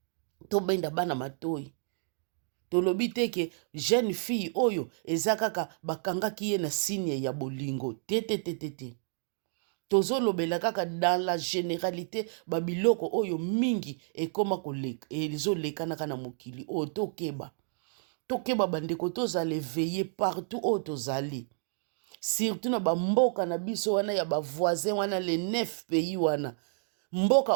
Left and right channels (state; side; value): silent; left; digital silence